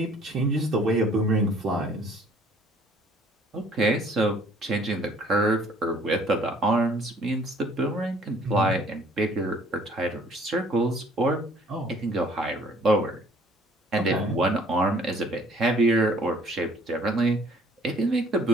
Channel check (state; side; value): normal; both; correlation 0.57